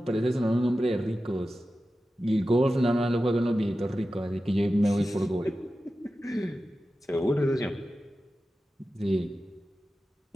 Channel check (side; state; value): both; normal; correlation 0.93